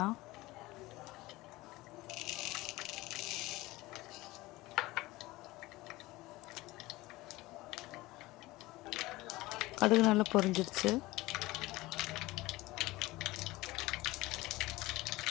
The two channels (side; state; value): right; quieter; 19.6 dB